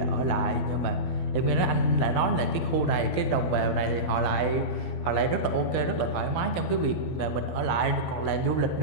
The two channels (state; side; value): late; right; 12 ms